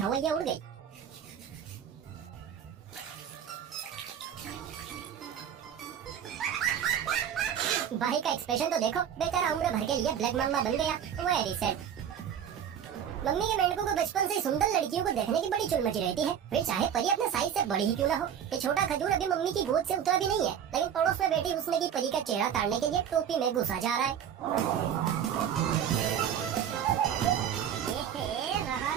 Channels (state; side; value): quieter; left; 8.9 dB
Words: उड़ गई। भाई का एक्सप्रेशन तो देखो, बेचारा उम्र भर के लिए ब्लैक मम्मा बन गया। Very sad. मम्मी के मेंढकों को बचपन से सुंदर लड़कियों को देखने की बड़ी चुल मची रहती है, फिर चाहे परी अपने साइज से बड़ी ही क्यों ना हो। ये छोटा खजूर अभी मम्मी की गोद से उतरा भी नहीं है, लेकिन पड़ोस में बैठी उसने की परी का चेहरा ताड़ने के लिए टोपी में घुसा जा रहा है। रहा